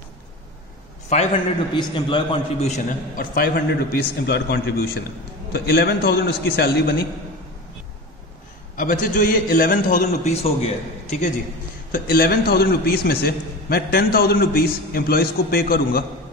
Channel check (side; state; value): both; normal; correlation 0.30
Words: 500 रुपीज एम्प्लॉयर कॉन्ट्रीब्यूशन है और 500 रुपीज एम्प्लॉयर कॉन्ट्रीब्यूशन है, तो 11,000 उसकी सैलरी बनी। अब बच्चे जो ये 11,000 रुपीज हो गया है, ठीक है जी, तो 11,000 रुपीज में से मैं 10,000 रुपीज एम्प्लॉयज को पे करूंगा,